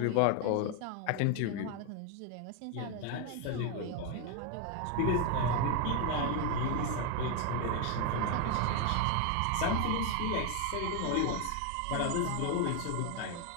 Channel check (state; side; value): different; both; correlation 0.01